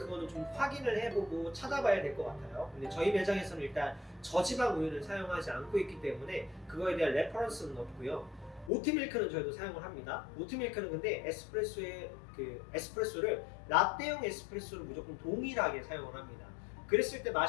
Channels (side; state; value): right; drops out; at 8.7 s